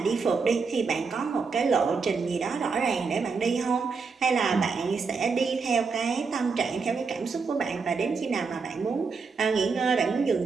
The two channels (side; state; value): left; quieter; 4.9 dB